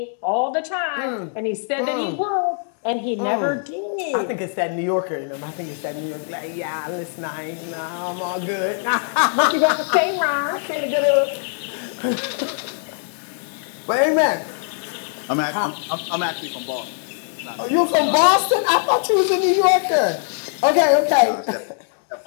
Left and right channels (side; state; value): right; silent; 64 dB below the other